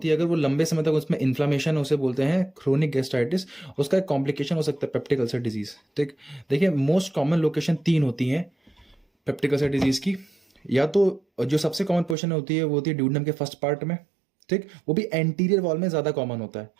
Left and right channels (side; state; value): left; drops out; at 12.2 s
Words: है अगर वो लंबे समय तक उसमें इन्फ्लामेशन उसे बोलते हैं क्रोनिक गैस्ट्राइटिस, उसका एक कॉम्प्लिकेशन हो सकता है पेप्टिक अल्सर डिजीज। ठीक, देखिए मोस्ट कॉमन लोकेशन 3 होती हैं पेप्टिक अल्सर डिजीज की। या तो जो सबसे कॉमन पोजिशन होती है वो होती है ड्यूडेनम के फर्स्ट पार्ट में। ठीक, वो भी एंटीरियर वॉल में ज्यादा कॉमन होता है।